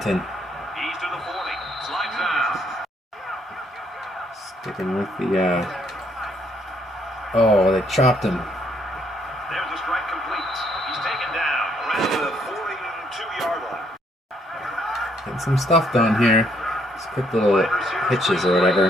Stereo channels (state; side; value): normal; both; correlation 0.69